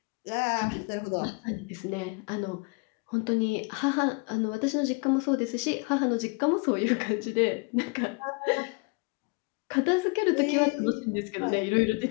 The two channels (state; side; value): quieter; right; 31.6 dB